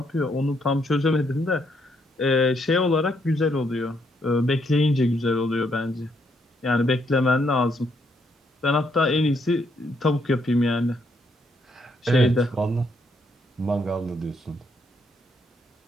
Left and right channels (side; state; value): both; normal; correlation 0.74